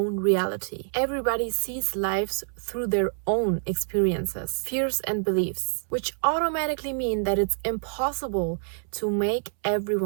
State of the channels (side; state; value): left; silent; 60 dB below the other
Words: reality. Everybody sees lives through their own experiences, fears and beliefs, which automatically mean that it's impossible to make